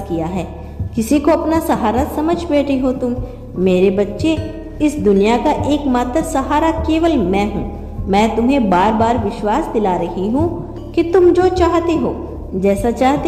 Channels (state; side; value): identical; both; correlation 1.00